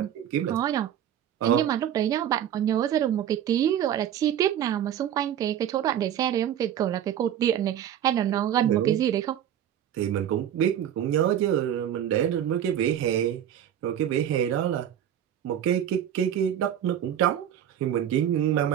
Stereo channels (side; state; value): left; quieter; 10.2 dB